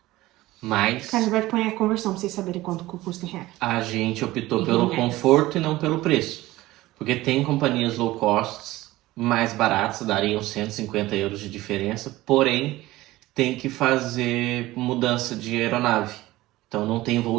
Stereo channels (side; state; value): left; quieter; 17.7 dB